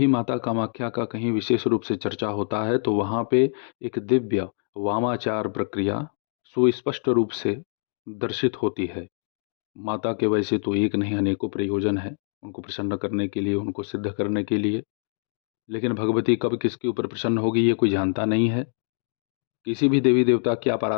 माता कामाख्या का कहीं विशेष रूप से चर्चा होता है तो वहाँ पे एक दिव्य वामाचार प्रक्रिया सुस्पष्ट रूप से दर्शित होती है। माता के वैसे तो एक नहीं अनेकों प्रयोजन है उनको प्रसन्न करने के लिए, उनको सिद्ध करने के लिए, लेकिन भगवती कब किसके ऊपर प्रसन्न होगी ये कोई जानता नहीं है। किसी भी देवी देवता की आप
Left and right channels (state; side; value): silent; right; digital silence